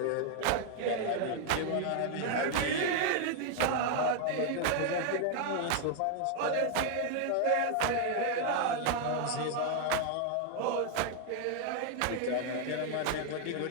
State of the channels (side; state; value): both; different; correlation 0.00